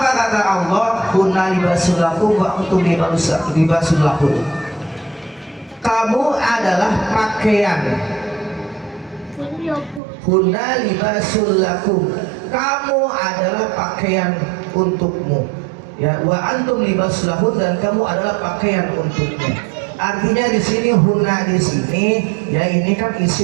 kata Allah? Kunna libasul lakum wa antum libasul lahum. Kamu adalah pakaian. Kunna libasul lakum. Kamu adalah pakaian untukmu. Ya, wa antum libasul lahum, dan kamu adalah pakaian untukmu. Artinya di sini hunna di sini ya ini kan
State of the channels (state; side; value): drops out; left; at 10.0 s